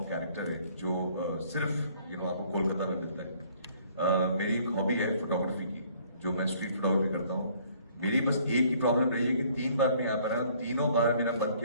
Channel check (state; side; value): inverted; both; correlation -0.60